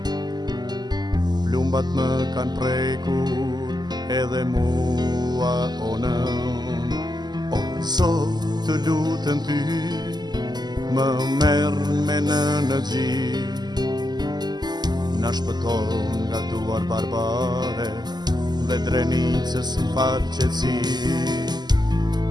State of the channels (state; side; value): late; left; 0.20 ms